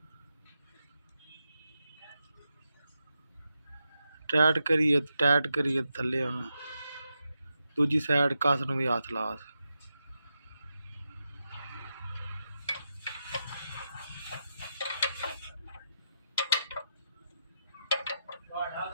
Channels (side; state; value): both; inverted; correlation -0.87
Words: ਟਾਈਟ ਕਰੀਏ ਥੱਲੇ ਹੁਣ ਦੂਜੀ ਸਾਈਡ ਕਸ ਨੂੰ ਵੀ ਹੱਥ ਲਾ।